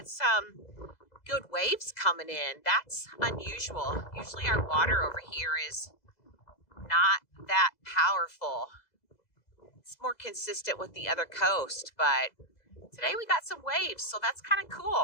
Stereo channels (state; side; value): late; right; 2.0 ms